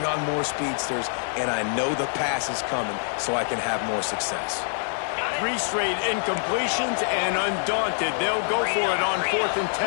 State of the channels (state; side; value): silent; right; 59 dB below the other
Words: on more speedsters and I know the pass is coming so I can have more success. 3 straight incompletions, and undaunted, they'll go for it on 4th and